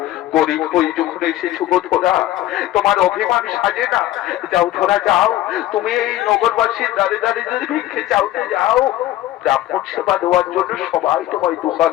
গরিব হই যখন এসেছো গো ধরা, তোমার অভিমান সাজে না। যাও ধরা যাও, তুমি এই নগরবাসীর দাঁড়িয়ে দাঁড়িয়ে যদি ভিক্ষে চাওতে যাও, ব্রাহ্মণ সেবা দেওয়ার জন্য সবাই তোমায় 2 হাত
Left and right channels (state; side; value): quieter; right; 14.5 dB